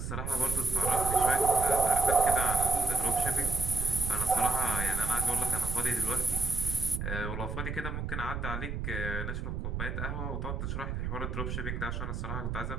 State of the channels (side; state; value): right; noise; rumble, 4 dB below the sound